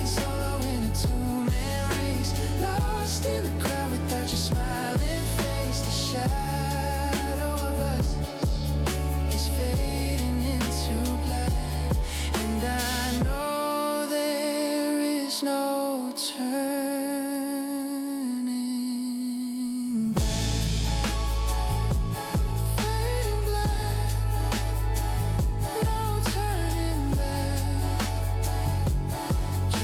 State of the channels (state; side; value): identical; both; correlation 1.00